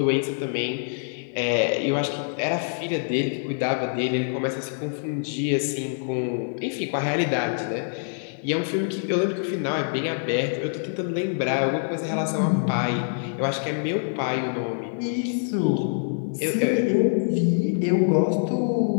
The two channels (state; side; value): silent; right; digital silence